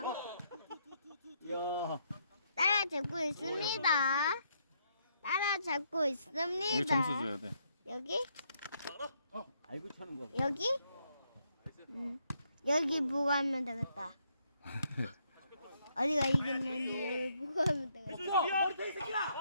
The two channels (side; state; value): both; inverted; correlation -0.74